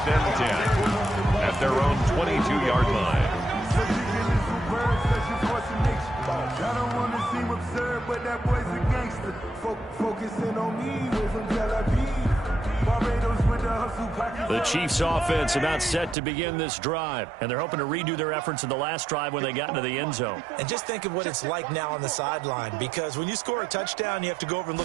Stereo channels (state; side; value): drops out; left; at 16.2 s